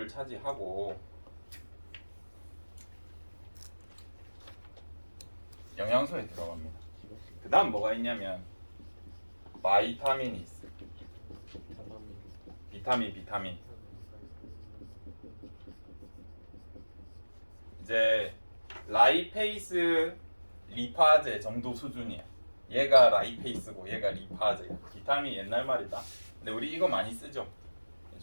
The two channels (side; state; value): both; inverted; correlation -1.00